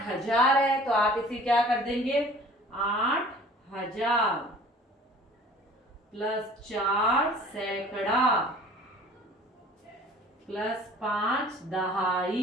है तो आप इसे क्या कर देंगे, 8000 प्लस 4 सैकड़ा प्लस 5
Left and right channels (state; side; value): normal; both; correlation 0.48